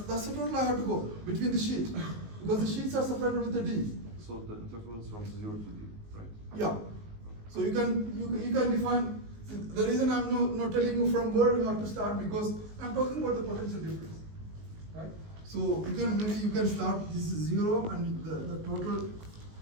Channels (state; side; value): late; left; 19 ms